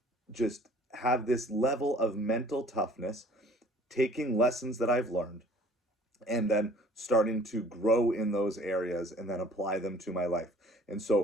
just have this level of mental toughness, taking lessons that I've learned and then starting to grow in those areas and then apply them to my life. And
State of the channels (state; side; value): normal; both; correlation 0.52